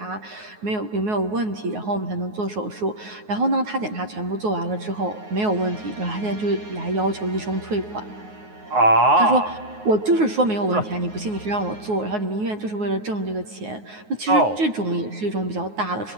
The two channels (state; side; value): late; left; 9.5 ms